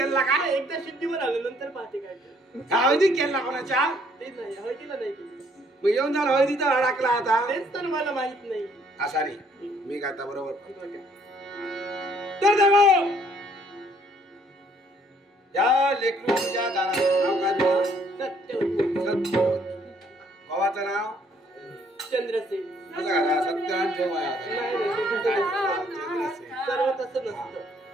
का. एकदा सिद्धीवर आलो नंतर पाहते काय. हळदी केला कोणाच्या. ते नाही हळदीला नाही केली. मग येऊन झालं हळदीचा अडकला आता. तेच तर मला माहित नाही. असा नाही मी गाता बरोबर. तर देवा या लेकरूच्या दाराचं नाव काय. सत्यवती. भावाचं नाव चंद्रसेन. सत्यान ठेवा सर्व तसं नसतं.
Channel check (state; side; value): normal; both; correlation 0.64